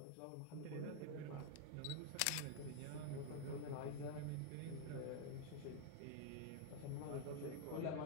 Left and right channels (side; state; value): both; different; correlation 0.00